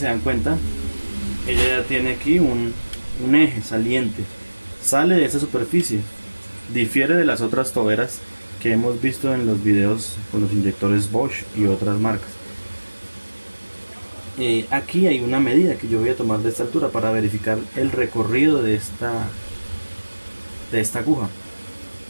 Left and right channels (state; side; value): inverted; both; correlation -1.00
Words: se dan cuenta, ella ya tiene aquí un eje saliente, sale de esa superficie, difiere de las otras toberas que hemos visto en los videos con los inyectores Bosch y otras marcas. Aquí hay una medida que yo voy a tomar de esta altura para verificar el recorrido de esta aguja.